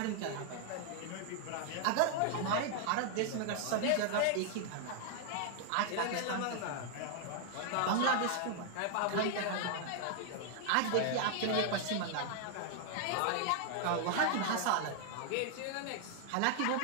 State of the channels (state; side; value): different; both; correlation 0.00